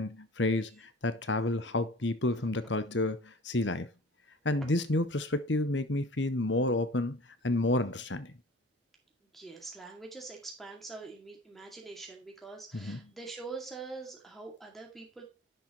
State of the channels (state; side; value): normal; both; correlation 0.43